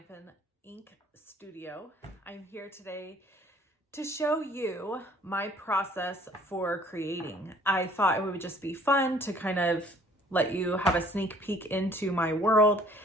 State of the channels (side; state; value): both; normal; correlation 0.56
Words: Ink Studio. I'm here today to show you my process for creating. I thought it would just be fun to kind of let you have a sneak peek into my world